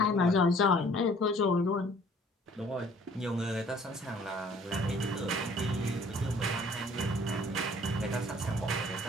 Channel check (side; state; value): both; normal; correlation 0.55